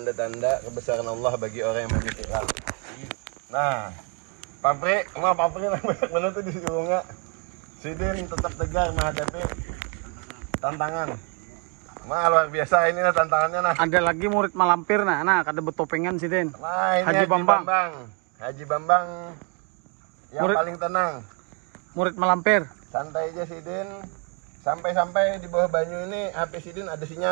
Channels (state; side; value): quieter; left; 35.9 dB